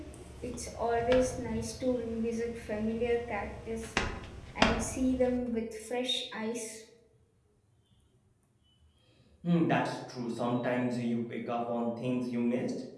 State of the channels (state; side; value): identical; both; correlation 1.00